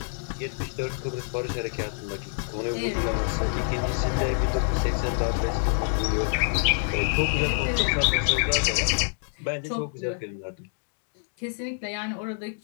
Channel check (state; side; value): silent; right; digital silence